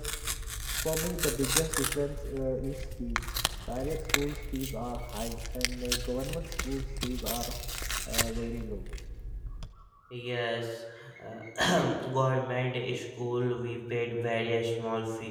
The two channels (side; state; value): both; identical; correlation 1.00